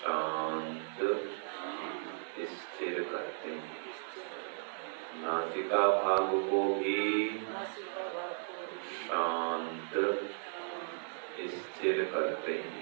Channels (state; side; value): silent; left; 54 dB below the other